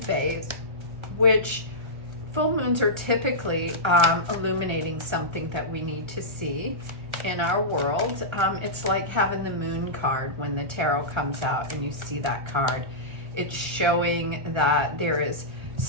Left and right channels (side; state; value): left; late; 1.3 ms